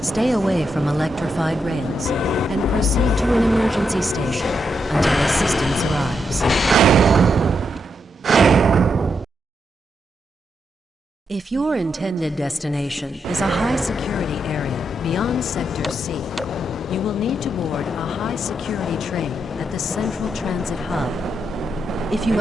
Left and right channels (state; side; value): normal; both; correlation 0.82